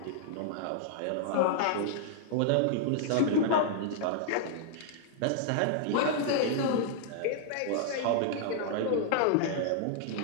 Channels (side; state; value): both; different; correlation -0.01